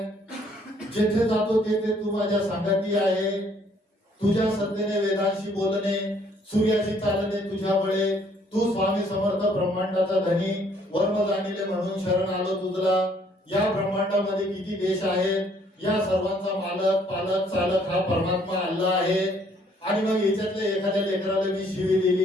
जेथे जातो तेथे तू माझ्या संगती आहे, तुझ्या सत्तेने वेदांशी बोलणे, सूर्याशी चालणे तुझ्या बळे, तू स्वामी समर्थ ब्रह्मांडाचा धनी, वर्म जाणिले म्हणून शरण आलो तुझला, या ब्रह्मांडामध्ये किती देश आहेत, या सर्वांचा मालक पालक चालक हा परमात्मा अल्लाह आहे। आणि मग याच्यातल्या एखाद्या लेकराला मी शिवी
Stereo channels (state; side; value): normal; both; correlation 0.64